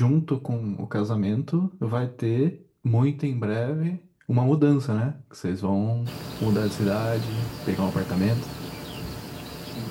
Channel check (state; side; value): identical; both; correlation 1.00